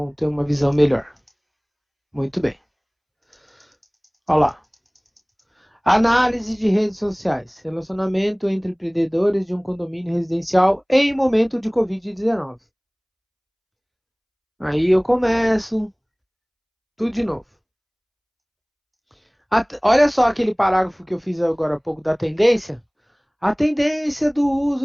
ter uma visão melhor. Muito bem. Olha lá. Análise de redes sociais. Relacionamento entre empreendedores de um condomínio residencial em momento de Covid-19. Aí eu começo tudo de novo. Olha só aquele parágrafo que eu fiz agora há pouco da tendência. A tendência do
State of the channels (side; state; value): both; identical; correlation 1.00